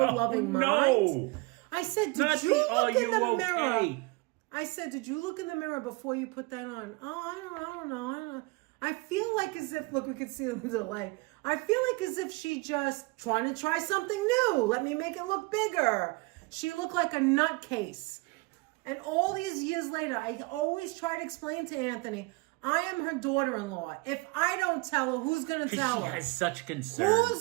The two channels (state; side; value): quieter; left; 25.4 dB